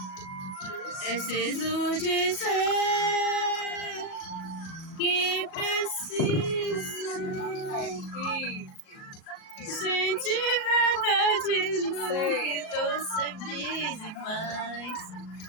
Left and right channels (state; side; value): late; right; 37 ms